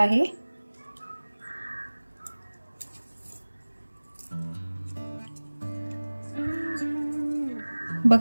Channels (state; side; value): inverted; both; correlation -1.00